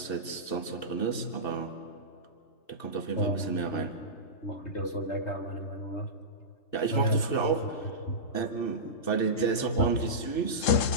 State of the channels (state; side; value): late; right; 2.6 ms